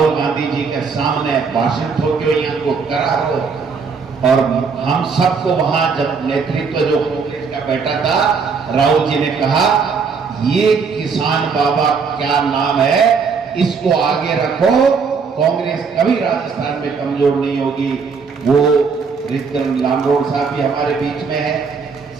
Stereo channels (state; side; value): quieter; left; 5.4 dB